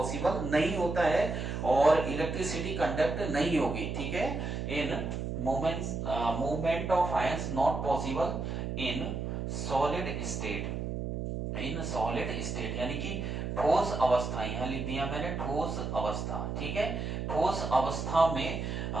नहीं होता है और इलेक्ट्रिसिटी कंडक्ट नहीं होगी, ठीक है, इन movements movement of ions not possible in solid state, in solid state यानी कि ठोस अवस्था, यहां लिख दिया मैंने ठोस अवस्था, ठीक है, ठोस अवस्था में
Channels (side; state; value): right; noise; hum, 3 dB below the sound